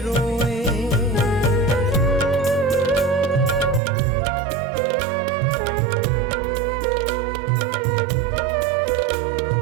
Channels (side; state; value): left; drops out; at 3.8 s